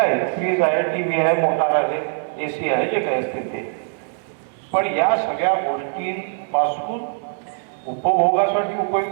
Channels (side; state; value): left; silent; 64 dB below the other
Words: फ्रीज आहे, टीव्ही आहे, मोटार आहे, एसी आहे, जे काही असते ते. पण या सगळ्या गोष्टींपासून उपभोगासाठी